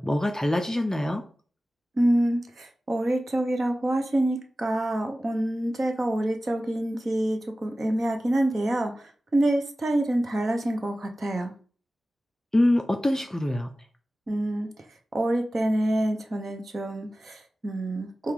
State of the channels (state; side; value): normal; both; correlation 0.96